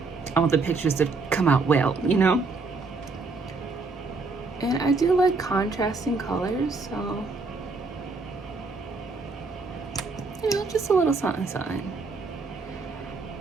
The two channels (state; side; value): quieter; left; 3.9 dB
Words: I want the pictures to come out well, you know? And I do like contrasting colors, so, you know, just a little something, something.